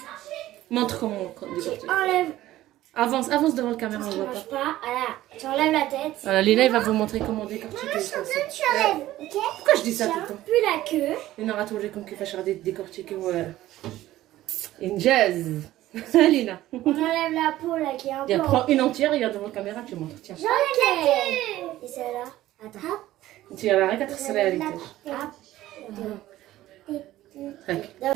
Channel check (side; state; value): left; quieter; 15.0 dB